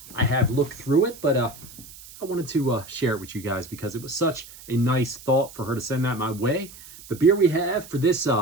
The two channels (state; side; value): noise; right; hiss, 18 dB below the sound